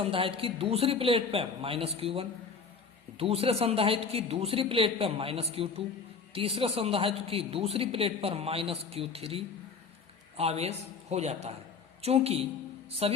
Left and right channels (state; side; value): quieter; right; 5.2 dB